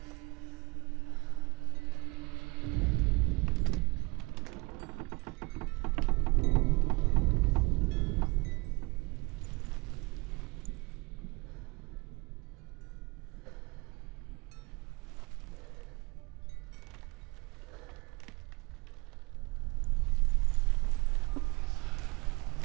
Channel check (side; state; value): left; quieter; 26.4 dB